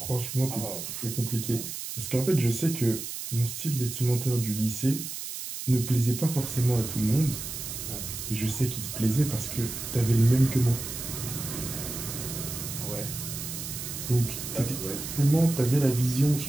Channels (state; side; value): noise; right; hiss, 7 dB below the sound